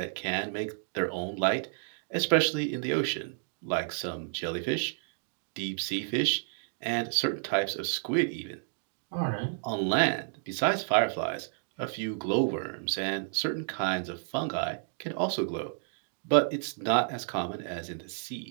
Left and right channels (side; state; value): left; silent; digital silence